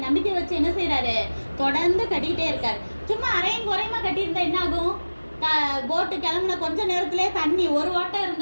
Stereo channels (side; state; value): both; inverted; correlation -1.00